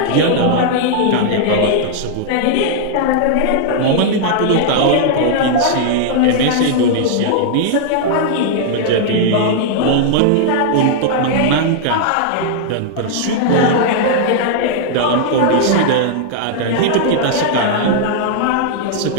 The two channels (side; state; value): both; different; correlation -0.01